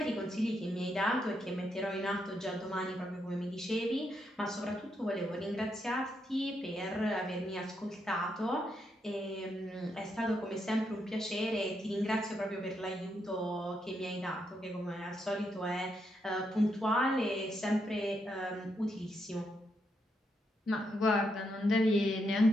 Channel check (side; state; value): both; normal; correlation 0.80